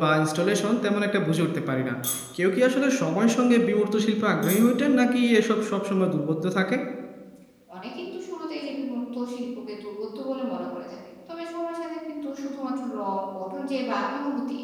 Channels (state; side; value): identical; both; correlation 1.00